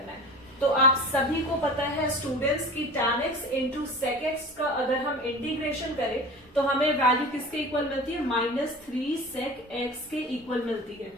है। तो आप सभी को पता है स्टूडेंट्स की tan x into sec x का अगर हम इंटीग्रेशन करें तो हमें वैल्यू किसके इक्वल मिलती है, -3 sec x के इक्वल मिलती है।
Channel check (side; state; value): both; normal; correlation 0.36